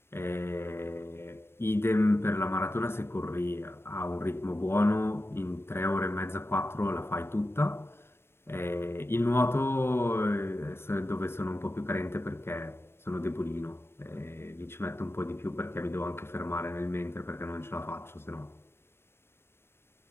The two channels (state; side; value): late; right; 0.12 ms